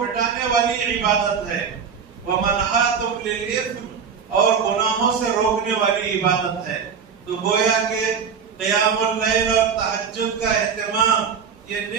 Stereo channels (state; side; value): quieter; left; 6.6 dB